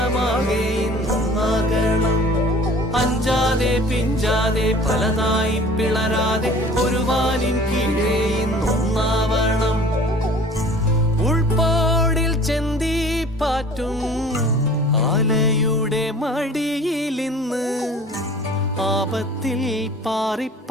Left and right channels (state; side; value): normal; both; correlation 0.47